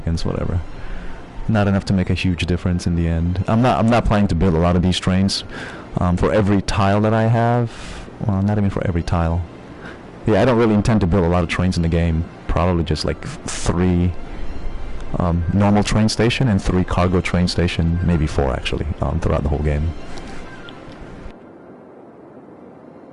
whatever. Not enough to make a huge difference in the end. I'm not planning to build a lot of these trains. For every tile that I have, well, not even for every tile. Yeah, I don't really intend to build a lot of trains in the game. Probably just like 3 normal train station and 3 cargo train station, maybe 4 actually, throughout the whole game.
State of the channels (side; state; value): both; identical; correlation 1.00